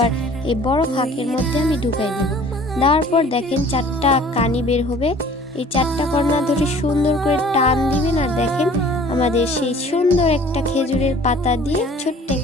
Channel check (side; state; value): both; normal; correlation 0.50